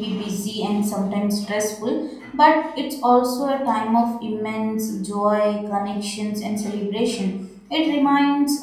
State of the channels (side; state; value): both; identical; correlation 1.00